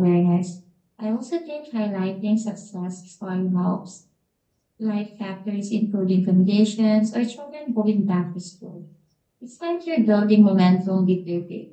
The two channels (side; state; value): both; identical; correlation 1.00